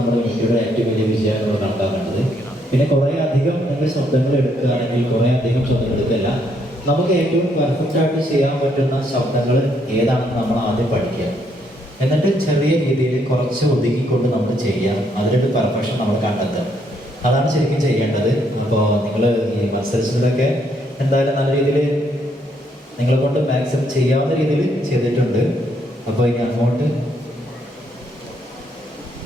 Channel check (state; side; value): normal; both; correlation 0.72